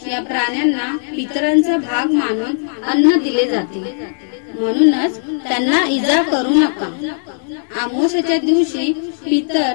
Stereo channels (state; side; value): silent; right; digital silence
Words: या प्राण्यांना पितरांचा भाग मानून अन्न दिले जाते, म्हणूनच त्यांना इजा करू नका। अमावस्येच्या दिवशी